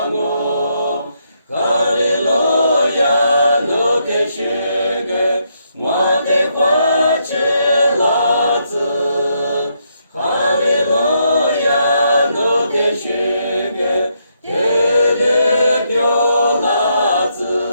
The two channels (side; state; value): both; inverted; correlation -0.77